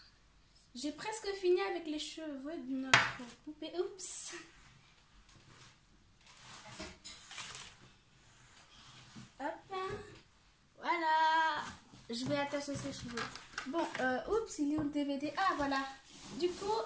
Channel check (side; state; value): both; identical; correlation 1.00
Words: j'ai presque fini avec les cheveux de notre poupée. Oups! Hop, voilà, je vais attacher ses cheveux. Bon, oups, il est où le DVD? Ah, voilà. Du coup,